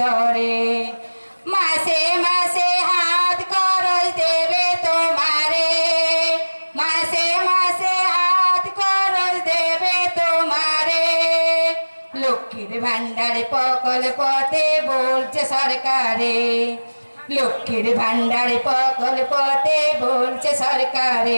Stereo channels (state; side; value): inverted; both; correlation -1.00